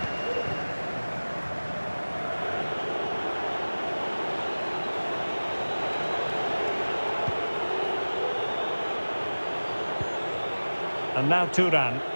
And now Turan.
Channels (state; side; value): inverted; both; correlation -1.00